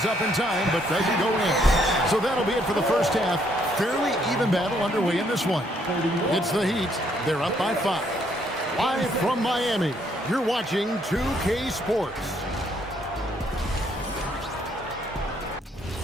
up in time, but doesn't go in. So that'll be it for the first half. Fairly even battle underway in this one. It's the Heat. They're up by 5. Live from Miami, you're watching 2K Sports.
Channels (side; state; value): both; normal; correlation 0.70